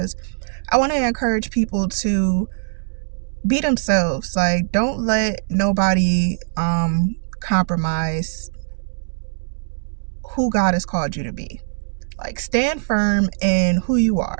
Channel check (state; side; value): silent; left; digital silence